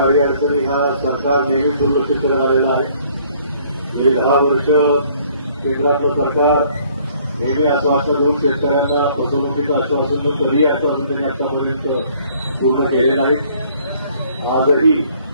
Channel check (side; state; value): both; inverted; correlation -0.60